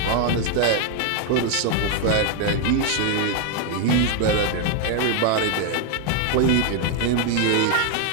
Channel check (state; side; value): different; both; correlation 0.01